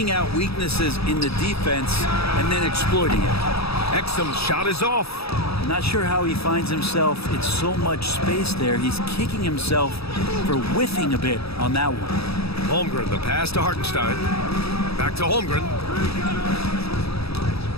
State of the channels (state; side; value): late; right; 0.77 ms